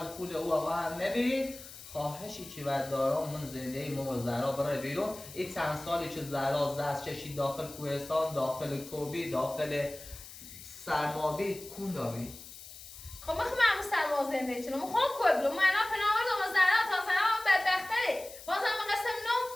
پول او آقا هم نبیرید خواهشی که بعد دارم من زنده ای ما و زهرا برای بیرون این چند سالی که زهرا زست چشید داخل کوهستان داخل کوبی داخل سرمابی کون داری خب من خیلی سرما زنده چنم خوام کوی بلو من الان پناه دم زهرا تا زهرا بدبختره باز هم قسم نو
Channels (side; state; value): left; noise; hiss, 15 dB below the sound